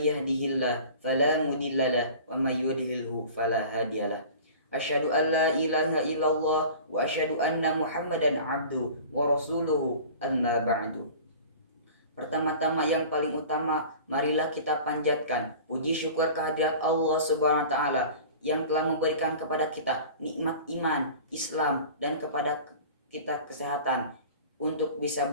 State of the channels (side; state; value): both; inverted; correlation -0.41